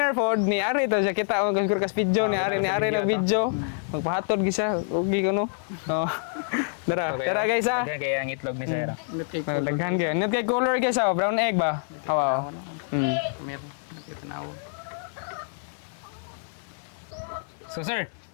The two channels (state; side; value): silent; right; 60 dB below the other